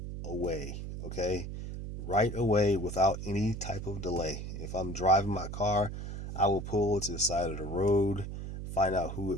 away, okay? Right away without any type of delay. If I'm driving my car, I will pull to the side of the road, find out who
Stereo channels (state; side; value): noise; right; hum, 7 dB below the sound